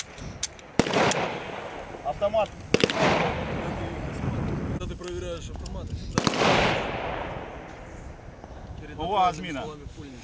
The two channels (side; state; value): both; identical; correlation 1.00